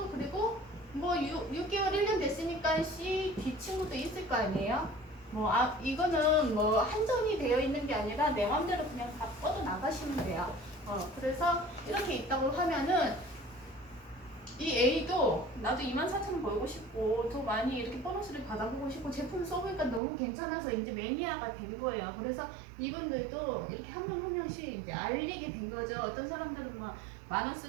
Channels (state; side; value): drops out; left; at 20.0 s